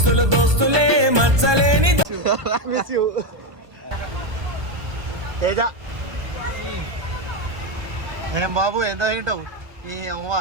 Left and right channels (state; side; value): late; left; 1.2 ms